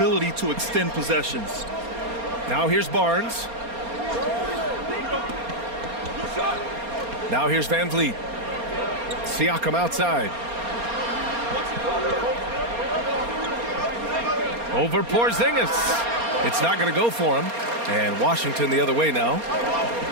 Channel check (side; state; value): left; late; 4.3 ms